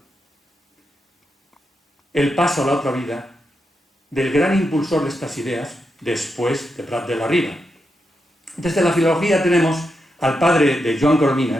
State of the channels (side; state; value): both; normal; correlation 0.85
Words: el paso a la otra vida del gran impulsor de estas ideas después de Prat de la Riba. Desde la filología tenemos al padre de Joan